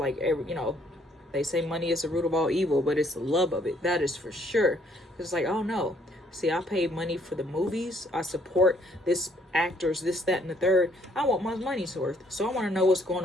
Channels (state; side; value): normal; both; correlation 0.66